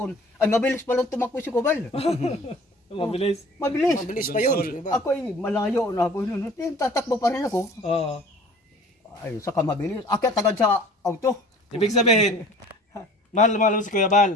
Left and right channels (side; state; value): both; normal; correlation 0.47